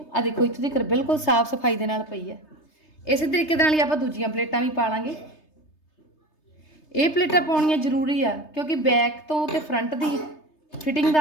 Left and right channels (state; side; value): late; right; 3.3 ms